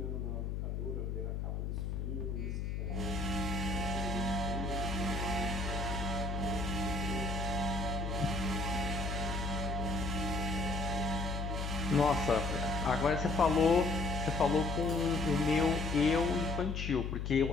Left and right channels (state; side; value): noise; left; hum, 2 dB below the sound